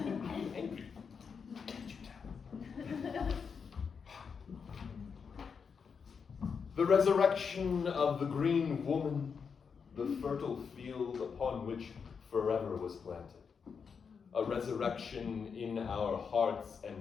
angry. Can't you tell? The resurrection of the green woman, the fertile field upon which forever was planted. A resurrection in our hearts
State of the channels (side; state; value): right; quieter; 6.1 dB